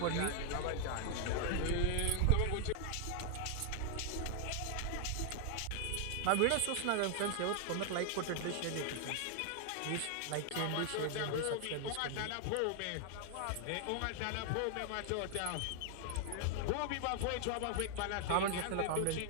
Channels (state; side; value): different; both; correlation 0.00